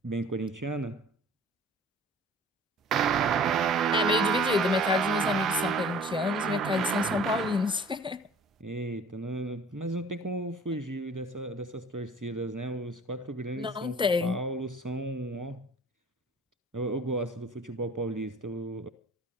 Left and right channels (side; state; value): both; normal; correlation 0.48